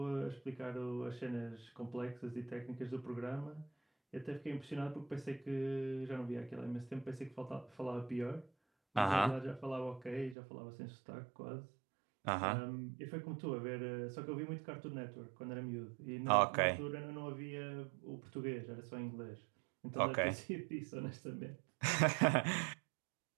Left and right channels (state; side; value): drops out; left; at 10.4 s